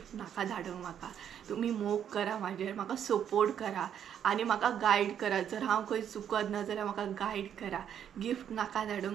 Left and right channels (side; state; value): left; quieter; 9.2 dB